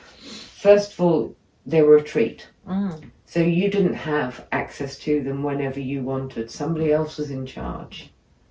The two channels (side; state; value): both; identical; correlation 1.00